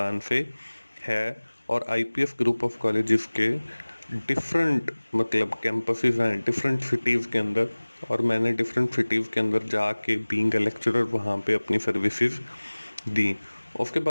से है। और IPS ग्रुप ऑफ कॉलेजेस के डिफरेंट कैंपसेस हैं डिफरेंट सिटीज़ के अंदर, और मैंने डिफरेंट सिटीज़ के अंदर जाके बीइंग अ लेक्चरर वहाँ पे अपनी सर्विसेज दी। उसके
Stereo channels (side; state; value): both; inverted; correlation -1.00